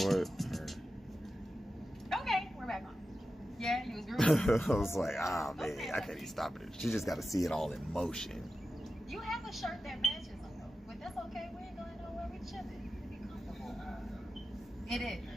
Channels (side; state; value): both; normal; correlation 0.92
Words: what? Okay, we're back on. Yeah, you was grooving. I was like, man, I can't even stop it. She just got to see it all in motion. You have a shirt that matches them, though. But that's okay. We ain't going nowhere. We chilling. We be comfortable. It is.